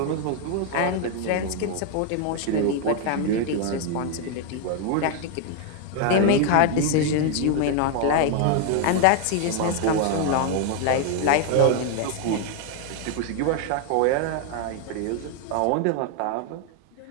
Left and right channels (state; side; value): different; both; correlation 0.00